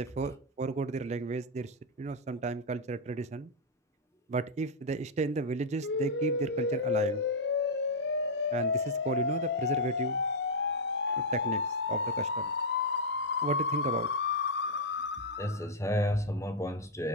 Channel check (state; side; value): normal; both; correlation -0.05